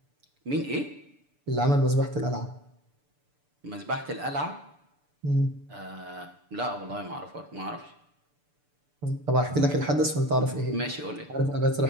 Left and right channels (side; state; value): left; late; 6.8 ms